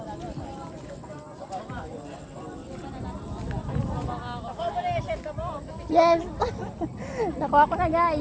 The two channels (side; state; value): both; identical; correlation 1.00